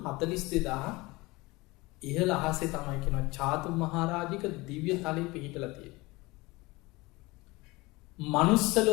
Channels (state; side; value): quieter; right; 22.6 dB